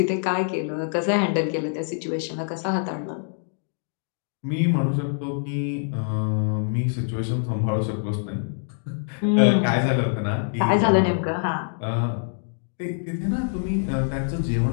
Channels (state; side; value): silent; right; digital silence